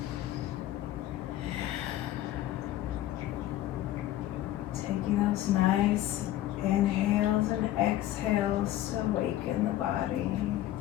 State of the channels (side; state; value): right; quieter; 13.9 dB